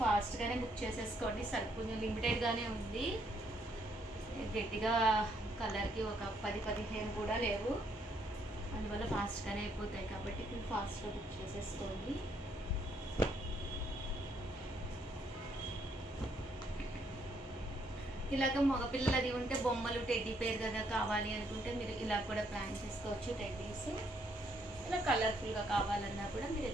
ఫాస్ట్గానే బుక్ చేసేసుకోండి, కొంచెం లిమిటెడ్గానే ఉంది. గట్టిగా కలర్కి ఒక 10-15 కూడా లేవు, అందువల్ల ఫాస్ట్గానే అయిపోతాయి కాబట్టి ఫాస్ట్గా బుక్ చేసేసుకోండి. ఇలాగ మగపిల్లలది ఉంటే బొమ్మలు టెడ్డీ పేరు కదా కావాలి అనుకుంటే మీరు ఇలా కూడా ప్లాన్ చేసుకోవచ్చు. టెడ్డీస్ ఇలా కలర్ఫుల్గా కావాలన్నా కూడా మీరు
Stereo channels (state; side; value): normal; both; correlation 0.71